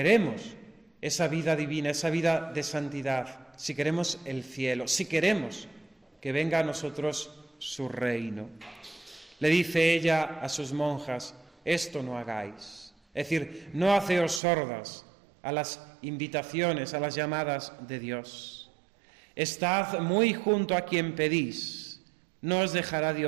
esa vida divina, esa vida de santidad, si queremos el cielo, si queremos que venga a nosotros su reino. Le dice ella a sus monjas, esto no hagáis. Es decir, no haceos sordas a las invitaciones, a las llamadas de Dios. Estad muy junto a quien pedís, no os dejará de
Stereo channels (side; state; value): left; drops out; at 14.4 s